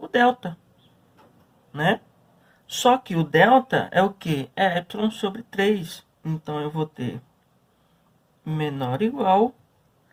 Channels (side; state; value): both; identical; correlation 1.00